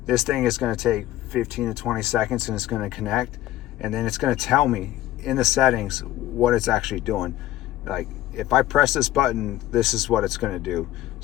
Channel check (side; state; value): right; quieter; 14.7 dB